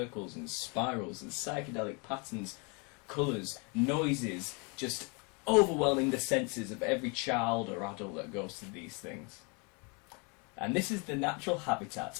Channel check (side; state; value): right; quieter; 32.2 dB